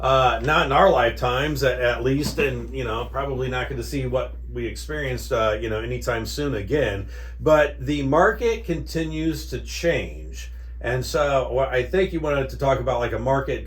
in our lifetimes at least, and, you know, probably not going to see what we experienced, anytime soon again. But the market continues to change. And so I think you wanted to talk about like a market,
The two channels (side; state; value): both; identical; correlation 1.00